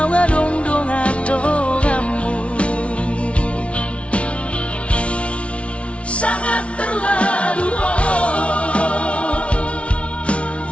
dong atongamu Sangat terlalu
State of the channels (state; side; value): late; right; 0.061 ms